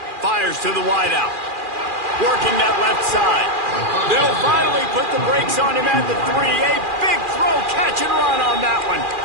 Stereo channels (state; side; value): late; left; 2.4 ms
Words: Fires to the wideout. Working that left side. They'll finally put the brakes on him at the 3. A big throw, catch and run on that one.